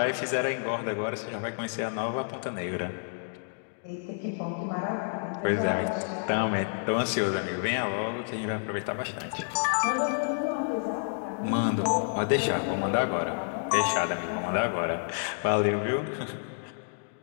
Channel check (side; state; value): right; silent; digital silence